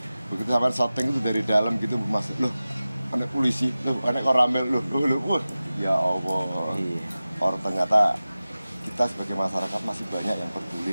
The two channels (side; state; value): both; inverted; correlation -0.96